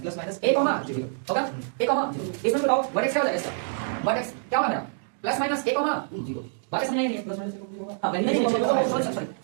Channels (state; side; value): silent; left; digital silence